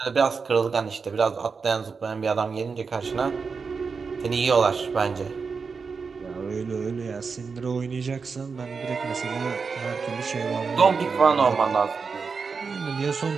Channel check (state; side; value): quieter; left; 5.1 dB